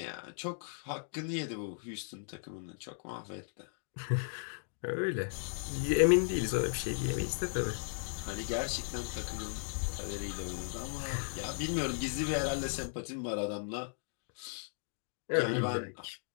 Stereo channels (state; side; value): silent; right; digital silence